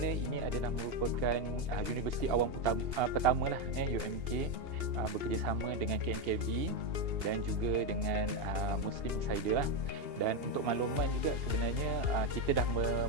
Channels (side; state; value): left; late; 2.8 ms